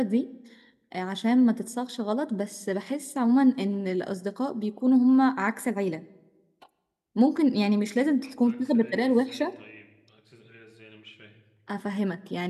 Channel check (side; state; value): both; identical; correlation 1.00